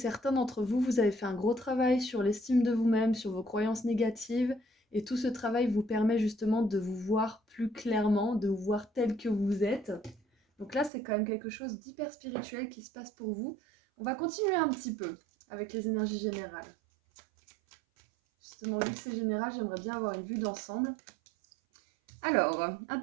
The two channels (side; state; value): left; drops out; at 10.9 s